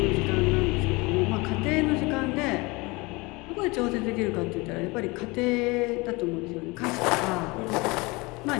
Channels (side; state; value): right; quieter; 25.0 dB